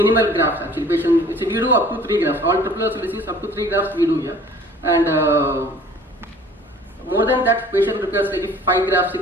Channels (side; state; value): both; normal; correlation 0.50